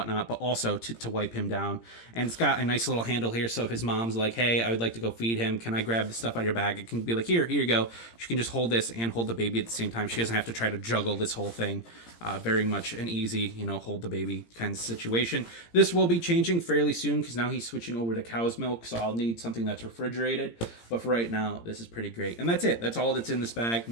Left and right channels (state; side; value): late; right; 17 ms